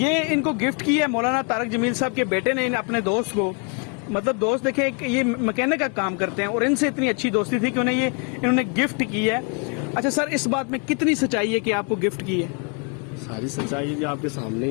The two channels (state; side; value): quieter; right; 36.3 dB